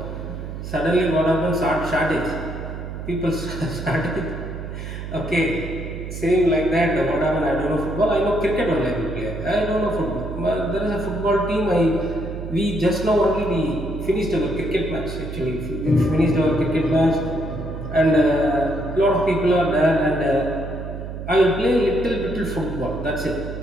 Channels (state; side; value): noise; right; hum, 8 dB below the sound